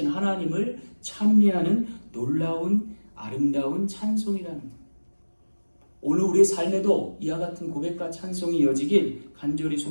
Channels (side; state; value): both; inverted; correlation -1.00